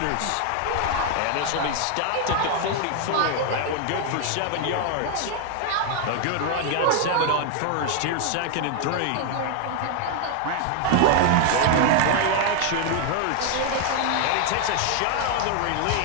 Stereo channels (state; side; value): different; both; correlation 0.00